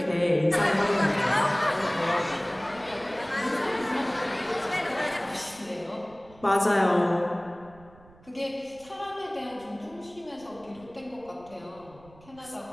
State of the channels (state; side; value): noise; right; rumble, 25 dB below the sound